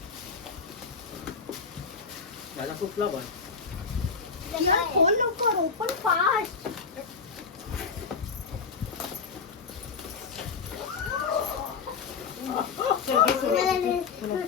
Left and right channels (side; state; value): right; quieter; 5.3 dB